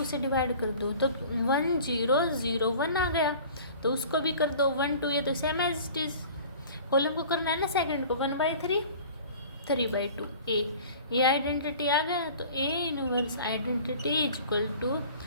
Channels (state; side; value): inverted; both; correlation -0.45